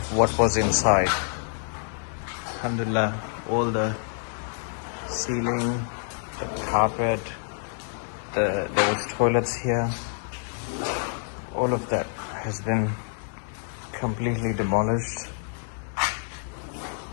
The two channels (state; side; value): silent; right; 60 dB below the other